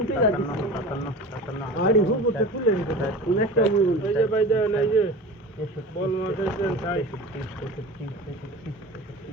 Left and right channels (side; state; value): both; normal; correlation 0.34